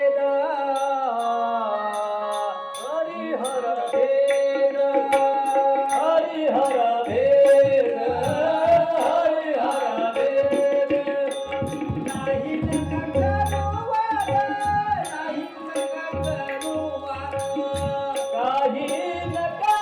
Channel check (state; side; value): identical; both; correlation 1.00